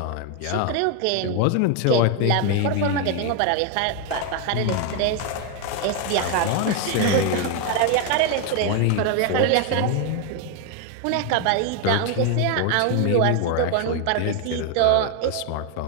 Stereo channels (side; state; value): both; different; correlation 0.01